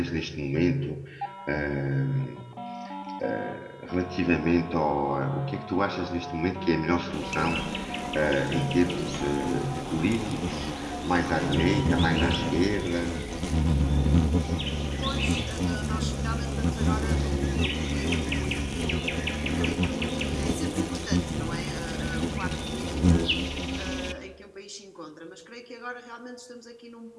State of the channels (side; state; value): both; identical; correlation 1.00